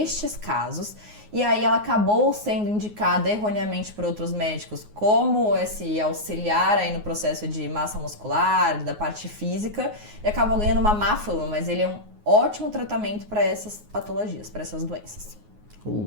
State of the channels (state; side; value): late; left; 9.5 ms